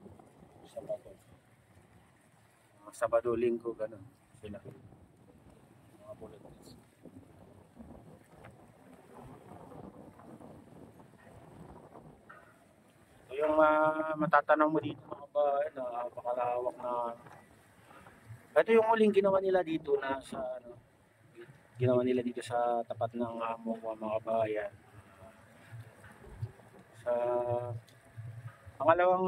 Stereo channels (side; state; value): both; identical; correlation 1.00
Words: Sabado, Linggo, gano'n sila. Mga volunteers. Ito yung matatanong mo dito mga kabayan, napakalawak na. Ito yung huling ginawa nila dito na sa ginawa nila dito sa tapat ng MOA mga kabayan. Sa